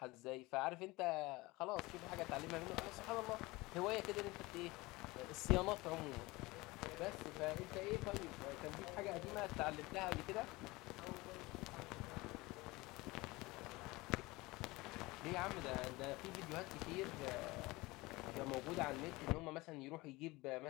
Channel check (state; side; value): quieter; right; 21.8 dB